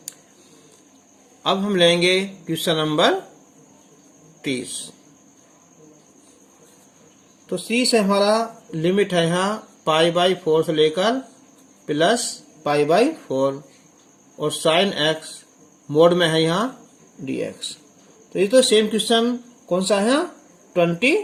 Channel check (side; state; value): both; identical; correlation 1.00